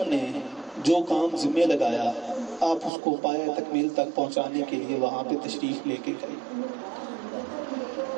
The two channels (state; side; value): drops out; left; at 2.9 s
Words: نے جو کام ذمہ لگایا آپ اس کو پایہ تکمیل تک پہنچانے کے لیے وہاں پہ تشریف لے کے گئے۔